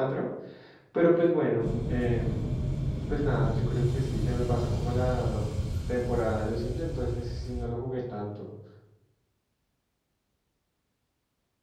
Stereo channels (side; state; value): both; identical; correlation 1.00